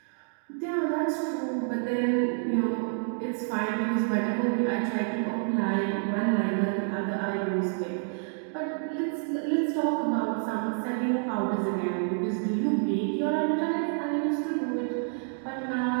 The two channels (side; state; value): left; silent; 59 dB below the other